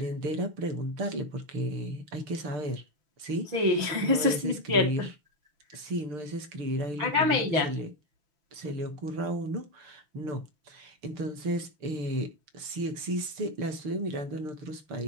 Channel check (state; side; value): late; left; 6.1 ms